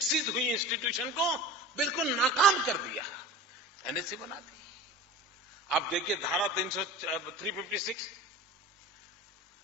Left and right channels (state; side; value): normal; both; correlation 0.35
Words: हुई इंस्टीट्यूशन को बिल्कुल नाकाम कर दिया, एनएसी बना दी। आप देखिए धारा 356,